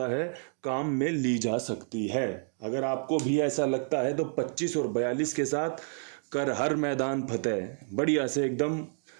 है, काम में ली जा सकती है। अगर आपको भी ऐसा लगता है तो 25 और 42 के साथ कर हर मैदान फतेह, बढ़िया से एकदम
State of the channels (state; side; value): silent; left; 58 dB below the other